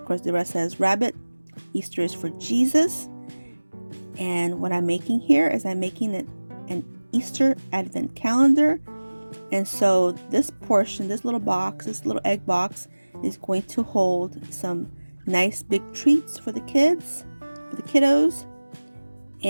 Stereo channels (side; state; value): both; inverted; correlation -1.00